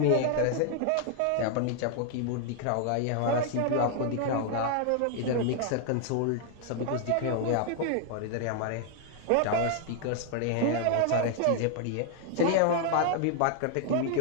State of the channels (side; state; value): both; different; correlation 0.00